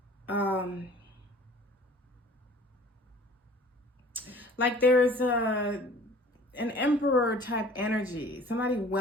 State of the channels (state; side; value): normal; both; correlation 0.48